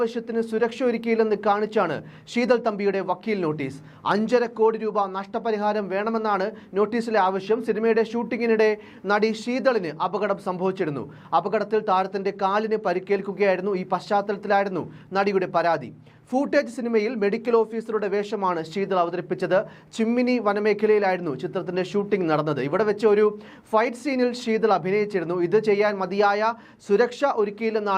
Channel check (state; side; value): identical; both; correlation 1.00